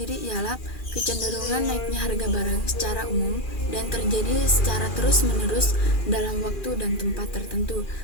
ialah kecenderungan naiknya harga barang secara umum dan terjadi secara terus-menerus dalam waktu dan tempat tertentu.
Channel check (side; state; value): right; late; 2.4 ms